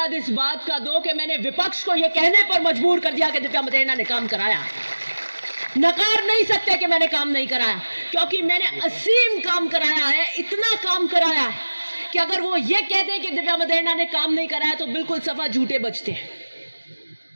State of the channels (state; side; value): inverted; both; correlation -1.00